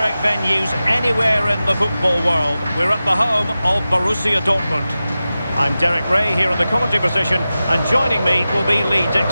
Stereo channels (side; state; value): both; inverted; correlation -0.94